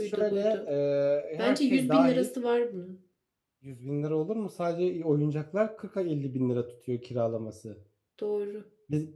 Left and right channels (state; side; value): identical; both; correlation 1.00